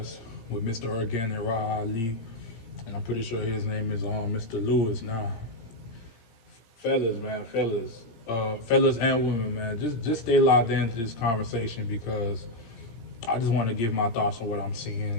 with Mr. Ergan and Raha Ali. And I'm pretty sure his name is Mr. Lewis now. Fellas, man, fellas and women, man, just stay locked into this conversation because I just want to give my thoughts on what I'm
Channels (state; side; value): late; right; 17 ms